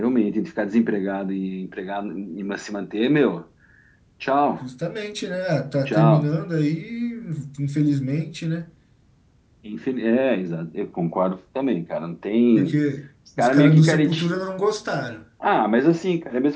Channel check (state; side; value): identical; both; correlation 1.00